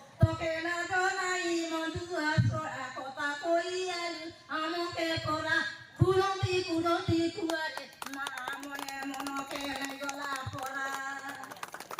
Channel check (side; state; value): both; identical; correlation 1.00